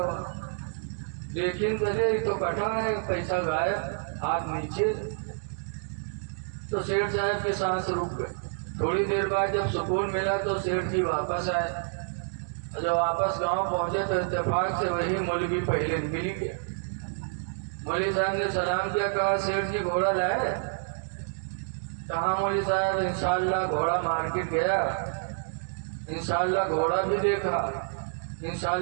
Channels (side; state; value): left; silent; digital silence